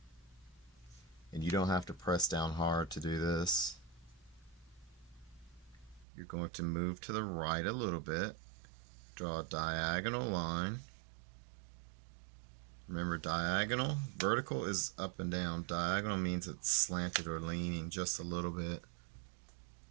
And you don't have to press down hard to do this. You're going to move to the right a little bit. Draw a diagonal line. Remember, diagonal, vertical is up and down. Diagonal means it's slanted or leaning just a little bit.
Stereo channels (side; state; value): left; drops out; at 6.1 s